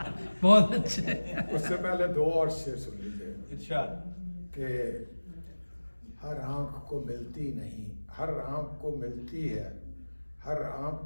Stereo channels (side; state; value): both; inverted; correlation -1.00